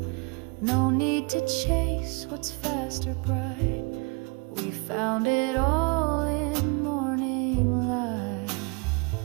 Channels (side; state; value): left; quieter; 31.3 dB